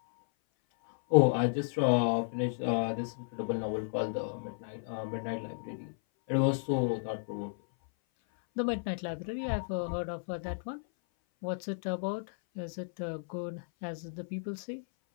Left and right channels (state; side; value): silent; right; 56 dB below the other